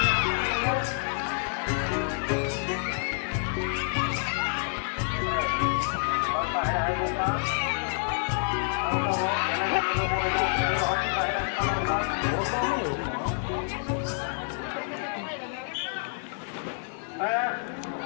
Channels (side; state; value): right; silent; 59 dB below the other